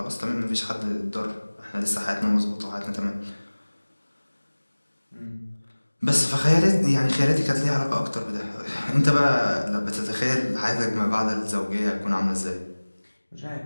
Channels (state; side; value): inverted; both; correlation -1.00